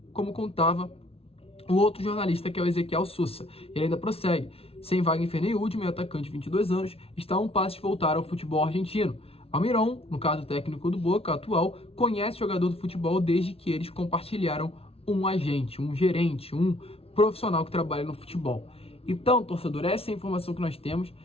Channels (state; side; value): late; right; 0.28 ms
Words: como contava o outro jornalista, que é o Ezequiel Sousa. Ele ainda prossegue: sem Wagner Ferney, meu atacante de 22 anos, está a um passo de voltar ao futebol argentino. Almiron, no caso técnico do Boca atual, conhece o jogador do futebol desde que eles compartilharam um agente, um gerente, um profissional que trabalha no futebol. Então, torcedor, essa é a informação que nós temos.